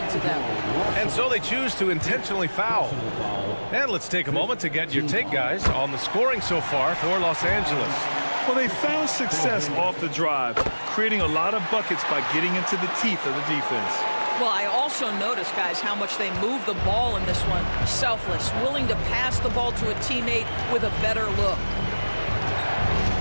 to them. And so they choose to intentionally foul. And let's take a moment to get your take, guys, on the scoring so far for Los Angeles. Well, they found success off the drive, creating a lot of buckets by getting into the teeth of the defense. Well, I also noticed, guys, how much they move the ball in this one. Selfless, willing to pass the ball to a teammate with a better look.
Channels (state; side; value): inverted; both; correlation -1.00